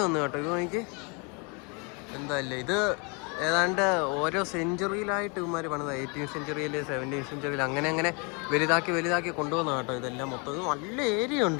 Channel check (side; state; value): right; quieter; 33.0 dB